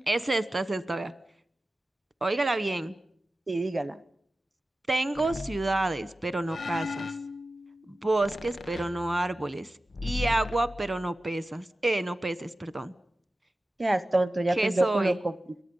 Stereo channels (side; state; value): both; normal; correlation 0.95